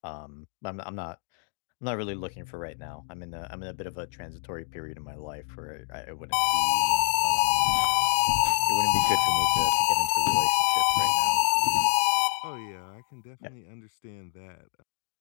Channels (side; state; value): right; silent; digital silence